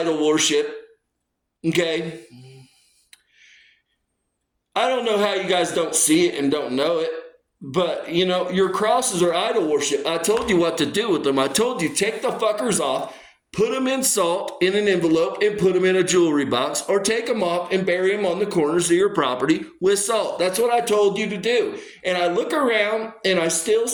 worship. Okay? I don't know how you guys don't see it and don't know it. But, your crosses are idol worship. I told you what to do with them. I told you, take the fuckers off, put them in salt in an envelope, and put them in a jewelry box, or take them off and bury them on the corners of your property with salt. That's what I told you to do. And I look around, and I still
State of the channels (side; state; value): both; identical; correlation 1.00